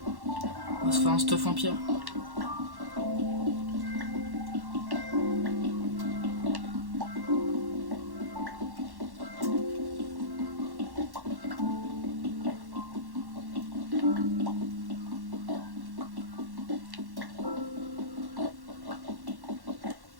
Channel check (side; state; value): left; late; 1.1 ms